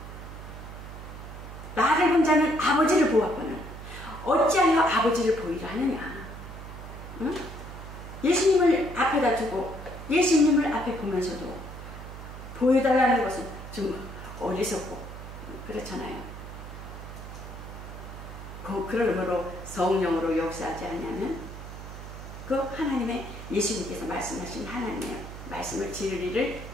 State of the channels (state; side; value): noise; right; hum, 12 dB below the sound